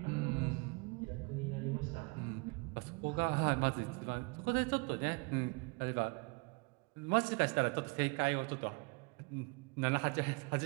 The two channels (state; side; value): quieter; left; 30.5 dB